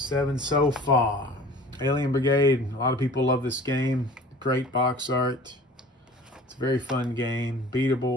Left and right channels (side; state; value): both; normal; correlation 0.44